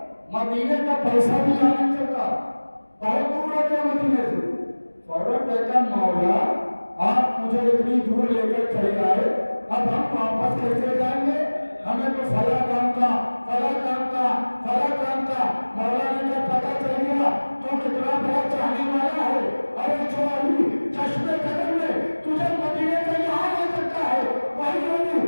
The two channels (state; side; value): inverted; both; correlation -1.00